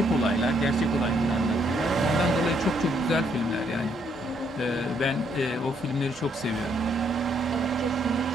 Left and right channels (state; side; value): normal; both; correlation 0.71